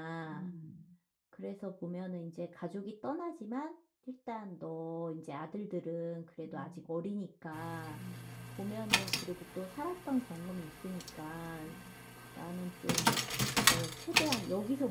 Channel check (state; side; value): identical; both; correlation 1.00